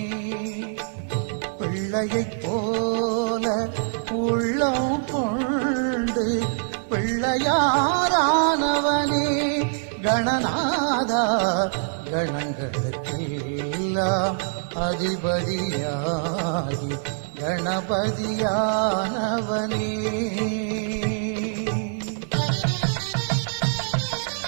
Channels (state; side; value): silent; left; digital silence